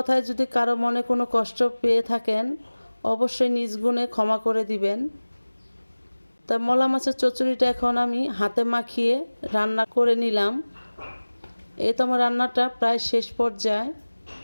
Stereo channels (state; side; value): inverted; both; correlation -1.00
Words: যদি কারো মনে কোনো কষ্ট পেয়ে থাকেন অবশ্যই নিজ গুণে ক্ষমা করে দিবেন। তাই মলা মাছের চচ্চড়িটা এখন আমি হাতে মাখিয়ে রান্না করে নিলাম। এই তো আমার রান্নাটা প্রায় শেষ পর্যায়ে।